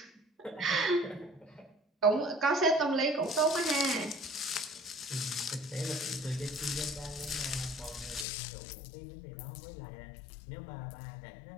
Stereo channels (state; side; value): drops out; right; at 8.2 s